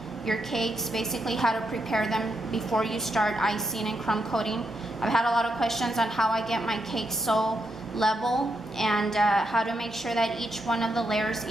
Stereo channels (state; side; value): normal; both; correlation 0.82